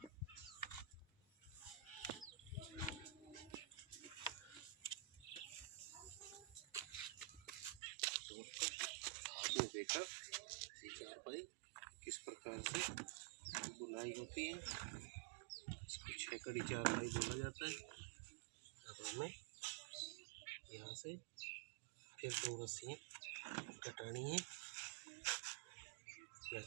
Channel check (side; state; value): left; drops out; at 7.8 s